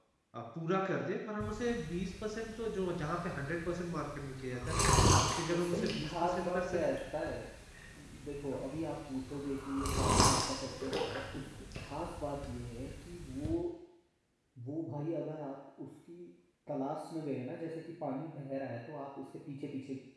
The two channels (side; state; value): both; identical; correlation 1.00